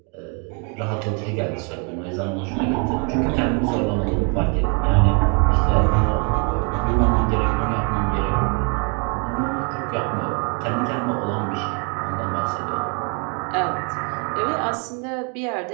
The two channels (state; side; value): quieter; left; 36.4 dB